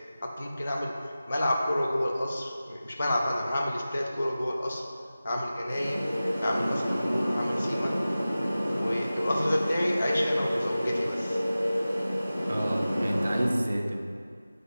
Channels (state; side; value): inverted; both; correlation -0.96